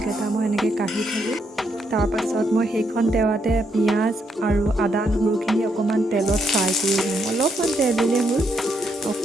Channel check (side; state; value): both; normal; correlation 0.77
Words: মই এনেকৈ কাঢ়ি থ'লোঁ। তাৰপাছত মই সেইখন তেৱাতে পিঁয়াজ আৰু আদা নহৰুখিনি অকণমান তেলত ফ্ৰাই কৰি ল'ম। অলপমান তেল দিলেই হ'ল,